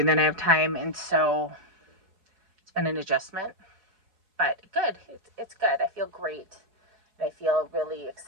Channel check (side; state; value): left; late; 4.7 ms